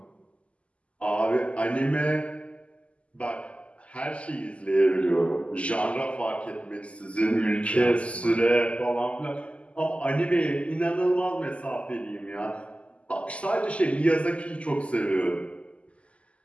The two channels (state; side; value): late; right; 0.059 ms